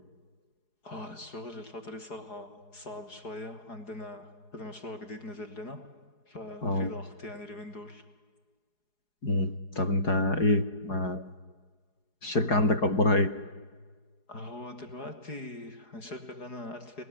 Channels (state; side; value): late; right; 4.8 ms